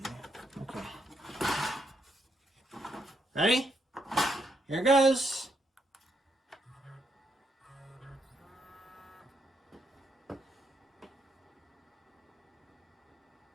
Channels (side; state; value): both; normal; correlation 0.77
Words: there. Okay. Ready? Here goes.